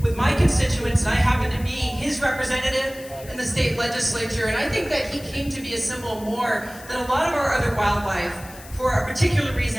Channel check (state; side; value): noise; left; hiss, 18 dB below the sound